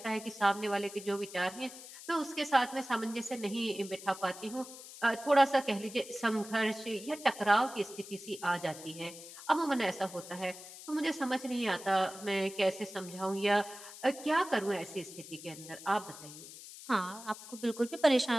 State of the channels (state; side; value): noise; left; hiss, 15 dB below the sound